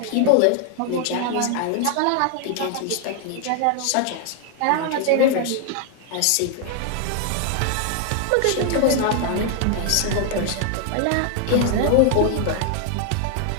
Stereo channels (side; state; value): both; different; correlation 0.00